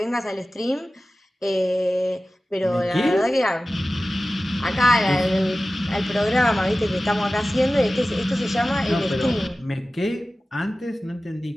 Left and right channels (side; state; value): both; normal; correlation 0.96